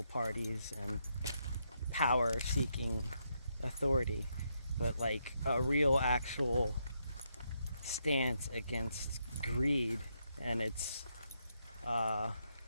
parties and power-seeking authority, but like a real actual stance against greed and its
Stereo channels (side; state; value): both; inverted; correlation -0.79